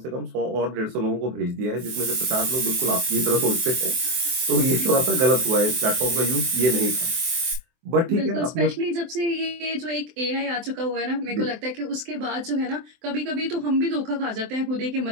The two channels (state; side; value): late; left; 23 ms